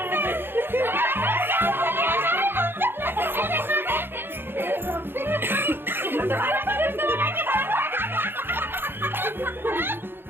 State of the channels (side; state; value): left; late; 0.10 ms